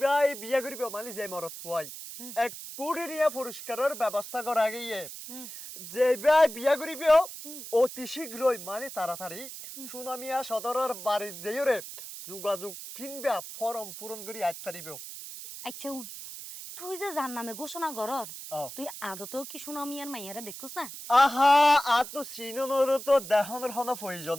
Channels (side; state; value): right; noise; hiss, 11 dB below the sound